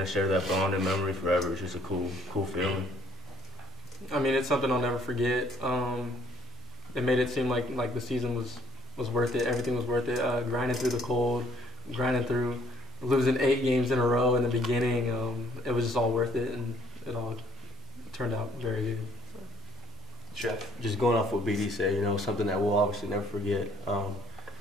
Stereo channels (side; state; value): both; normal; correlation 0.62